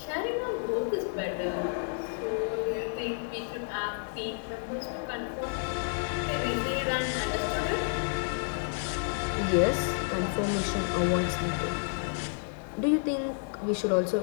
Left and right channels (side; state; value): right; silent; digital silence